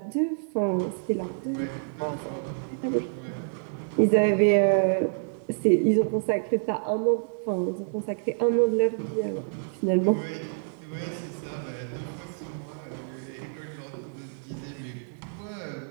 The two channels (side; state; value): left; silent; digital silence